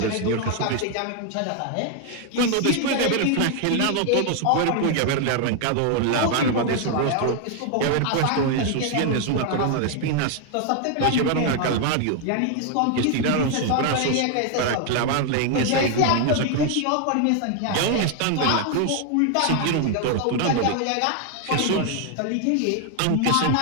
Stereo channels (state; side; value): different; both; correlation 0.00